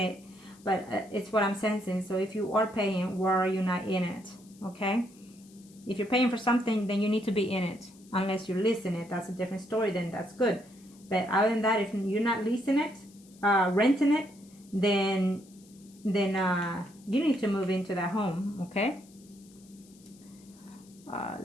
it, but it's what I'm sensing. So if you are paying, why are you not in it, okay? If you're paying for something, then you need to be in it. Unless you're leasing it, that's a different story, then that's good. But other than that, if you're not leasing it, renting it, then you need to move into that home, okay?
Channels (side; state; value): left; noise; hiss, 26 dB below the sound